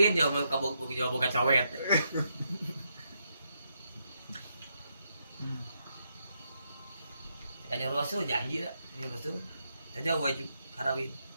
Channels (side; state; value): both; inverted; correlation -0.80